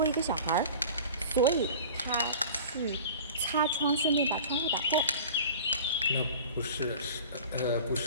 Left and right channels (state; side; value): inverted; both; correlation -0.40